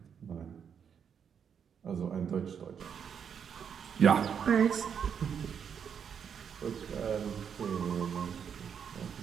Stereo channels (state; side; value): quieter; left; 7.5 dB